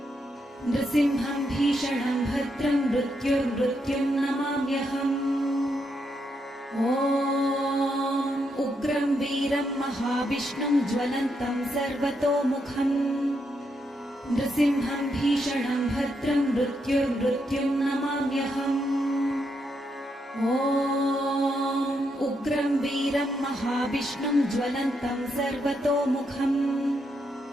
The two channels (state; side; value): normal; both; correlation 0.80